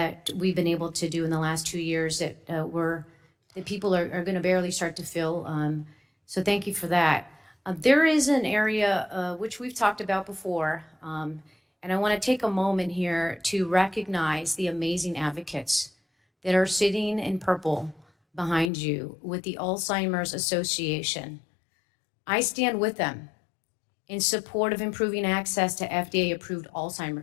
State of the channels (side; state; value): right; drops out; at 18.7 s